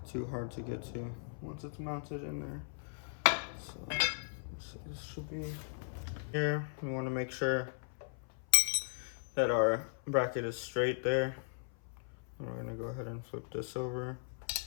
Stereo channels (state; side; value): silent; right; 53 dB below the other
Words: too hard to get to once it's mounted in there. So this should be here. We want to make sure that our bracket is straight there. We're gonna go ahead and flip this over,